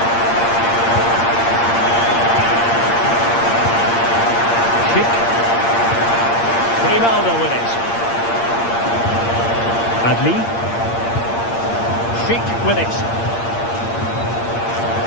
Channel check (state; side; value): late; right; 8.7 ms